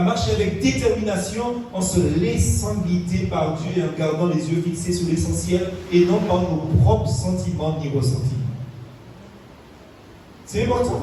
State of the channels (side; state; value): both; identical; correlation 1.00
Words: marcher avec détermination, en se laissant guider par Dieu et en gardant les yeux fixés sur l'essentiel et non par nos propres sentiments ni ressentiments. C'est important